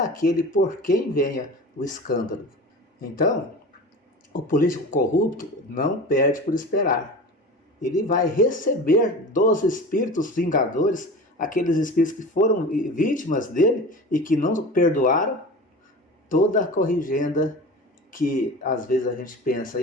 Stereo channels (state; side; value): normal; both; correlation 0.34